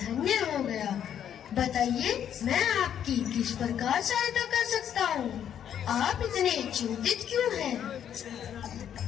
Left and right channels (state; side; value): quieter; right; 9.5 dB